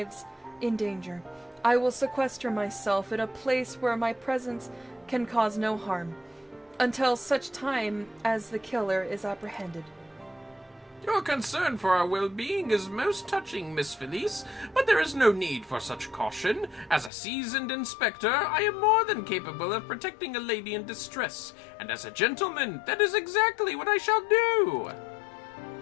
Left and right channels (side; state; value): right; drops out; at 17.1 s